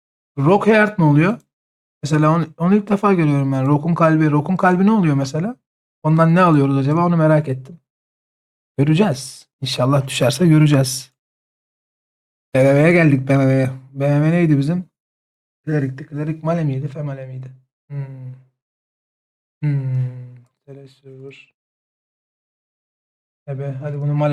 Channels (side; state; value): both; identical; correlation 1.00